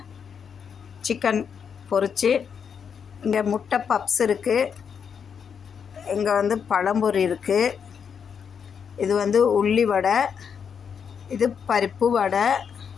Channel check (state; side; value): quieter; right; 7.0 dB